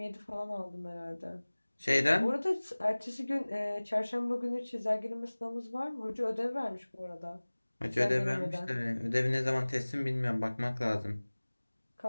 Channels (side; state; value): both; inverted; correlation -1.00